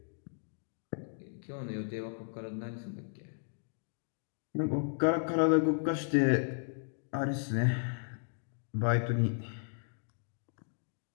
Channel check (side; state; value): right; silent; digital silence